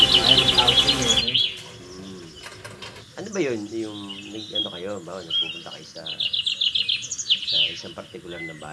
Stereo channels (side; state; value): both; identical; correlation 1.00